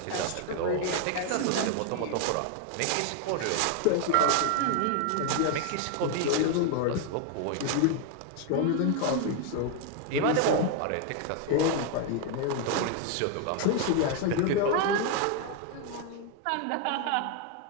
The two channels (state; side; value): different; both; correlation 0.01